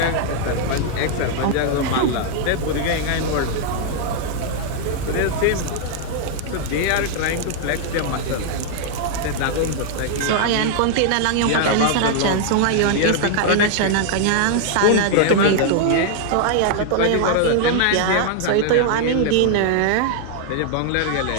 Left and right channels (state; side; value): different; both; correlation 0.00